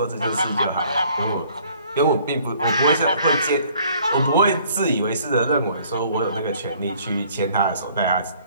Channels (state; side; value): inverted; both; correlation -0.58